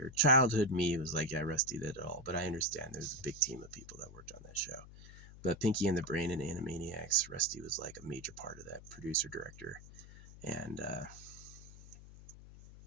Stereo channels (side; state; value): left; noise; hum, 17 dB below the sound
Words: Childhood me was like, yeah, Rusty did it all. But I understand there's a big team of people that worked on that show. But Pinky and the Brain and Animaniacs, Rusty was like a major part of that, producer, director. And